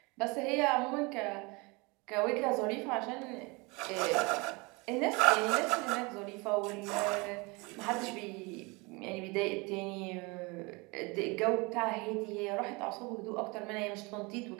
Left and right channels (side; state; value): left; quieter; 27.0 dB